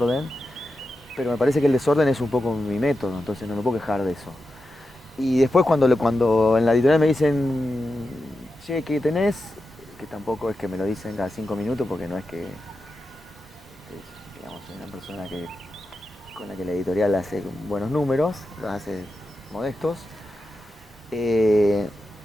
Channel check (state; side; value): normal; both; correlation 0.90